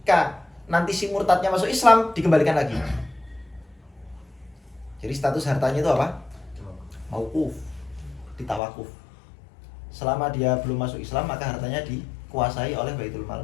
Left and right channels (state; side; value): drops out; right; at 8.6 s